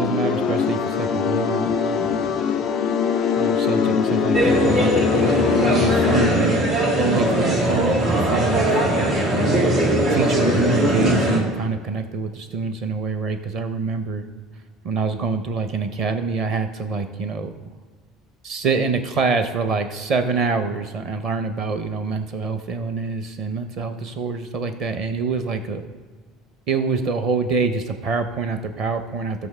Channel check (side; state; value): both; normal; correlation 0.42